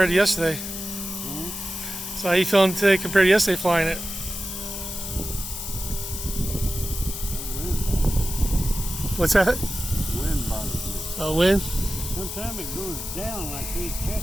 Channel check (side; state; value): left; noise; hiss, 7 dB below the sound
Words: to yesterday? So how you feeling today compared to yesterday flying it? What's that? Wind bothers me. Oh, wind? Sometimes it goes down and I can't check